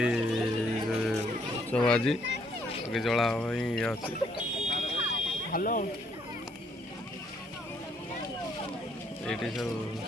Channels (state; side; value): normal; both; correlation 0.68